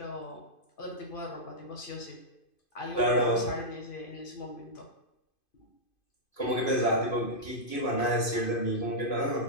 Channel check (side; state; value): right; late; 2.5 ms